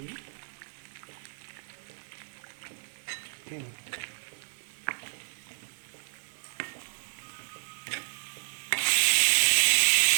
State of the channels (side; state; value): left; silent; 57 dB below the other